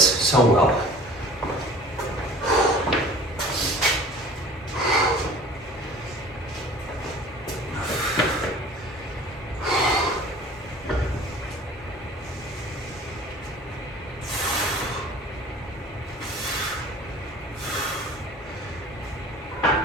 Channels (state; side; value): normal; both; correlation 0.45